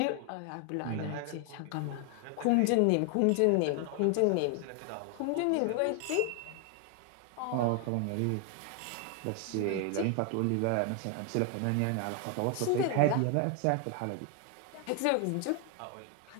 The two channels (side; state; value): both; different; correlation 0.00